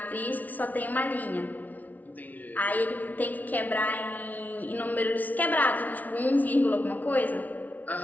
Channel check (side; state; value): right; late; 0.076 ms